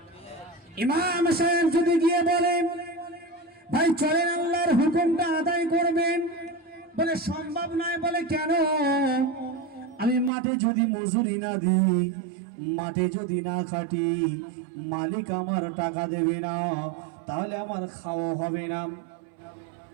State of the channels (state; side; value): drops out; left; at 10.3 s